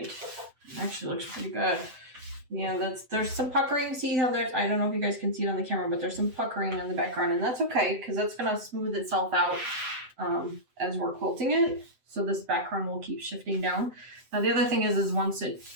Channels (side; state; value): left; late; 7.9 ms